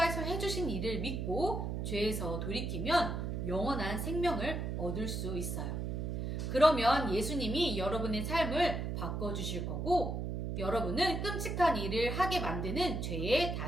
해주신 일을 믿고 죄에서 돌이키면 영원한 생명을 얻을 수 있어요. 그러면 예수님이 여러분의 삶을 바꿔주실 거고 여러분은 끔찍한 일을 하게 만드는 죄의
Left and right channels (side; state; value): right; noise; hum, 2 dB below the sound